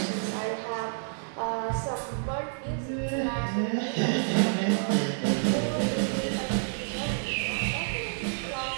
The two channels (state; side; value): silent; left; digital silence